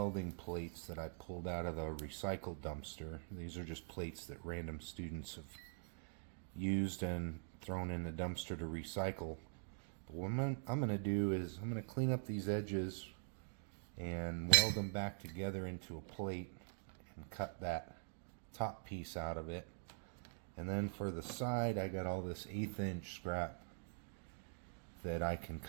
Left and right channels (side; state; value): left; silent; digital silence